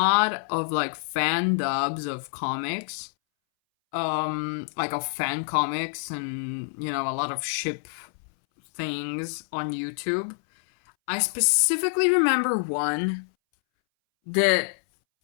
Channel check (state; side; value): silent; right; 61 dB below the other